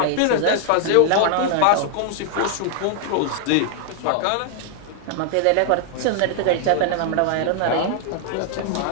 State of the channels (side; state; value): both; different; correlation 0.00